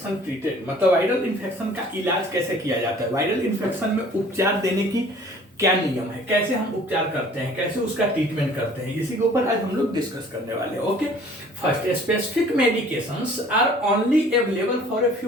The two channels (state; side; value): normal; both; correlation 0.52